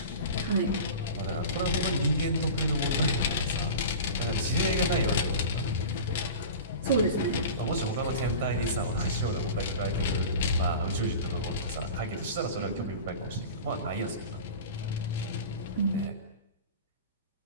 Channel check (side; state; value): both; inverted; correlation -0.33